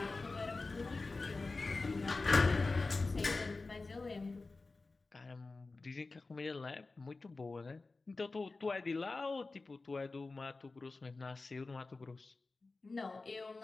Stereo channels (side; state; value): right; quieter; 3.6 dB